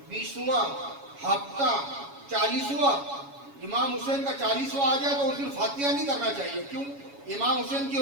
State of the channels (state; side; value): late; left; 7.2 ms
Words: 20واں ہفتہ 40واں امام حسین کا 40واں آ جائے تو اس دن فاتحہ نہیں کرنا چاہیے۔ کیوں؟ امام حسین کی